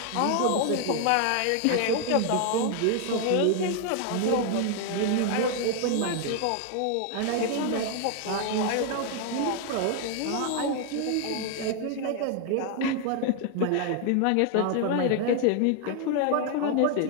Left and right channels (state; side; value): different; both; correlation 0.00